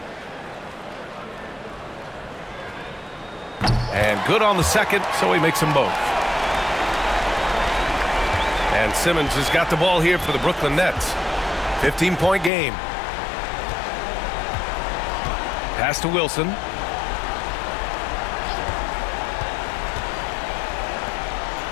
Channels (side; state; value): right; drops out; at 12.5 s